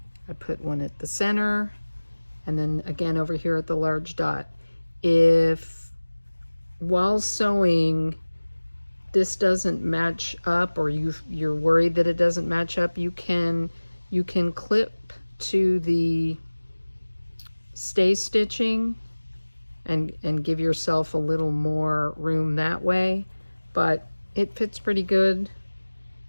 I put one at the center, and then again over here at the large dot. If while sewing this doesn't match up, or you're worried that it doesn't match up, you can clip to the stay stitching and give yourself a little more room that way, but it fits pretty good.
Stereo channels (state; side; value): inverted; both; correlation -1.00